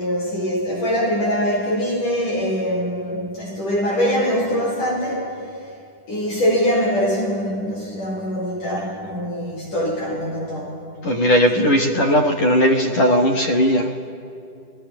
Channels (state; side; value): late; right; 10 ms